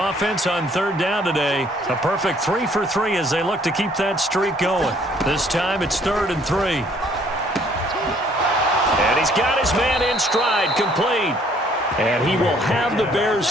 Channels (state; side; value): normal; both; correlation 0.62